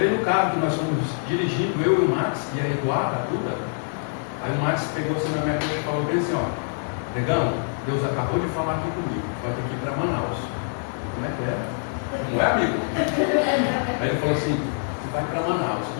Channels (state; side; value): silent; right; digital silence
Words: no carro, que nós fomos dirigindo, eu e o Max, e a Eduarda, a Duda, aí o Max pegou assim na minha coxa e falou bem assim, ó, negão, Deus acabou de falar aqui comigo, vai ter que ir para Manaus. Como é que é? Não é, amigo? Aí ele falou assim, tu vai para Manaus.